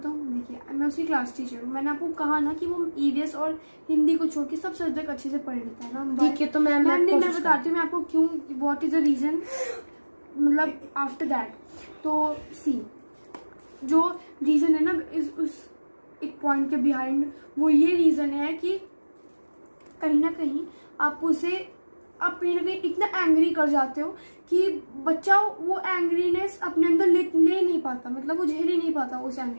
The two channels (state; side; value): inverted; both; correlation -1.00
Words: देखिए मैं उसकी क्लास टीचर हूँ, मैंने आपको कहा ना कि वो ईवीएस और हिंदी को छोड़ के सब सब्जेक्ट अच्छे से पढ़ लेता है ना। ठीक है, तो मैं बताती हूँ मैं आपको क्यों, व्हाट इज द रीजन, मतलब आफ्टर दैट। तो सी जो रीजन है ना उस एक पॉइंट के बिहाइंड, वो ये रीजन है कि कहीं ना कहीं आप कहीं ना कहीं इतना एंग्री कर जाते हो कि बच्चा वो एंग्रीनेस अपने अंदर ले नहीं पाता, मतलब वो झेल ही नहीं पाता उस